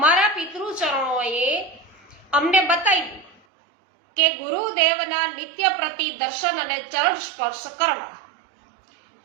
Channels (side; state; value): left; drops out; at 3.4 s